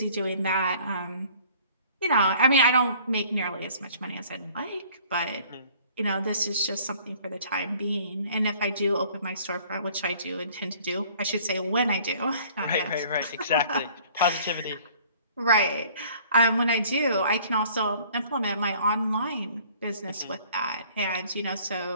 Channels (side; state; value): both; inverted; correlation -0.54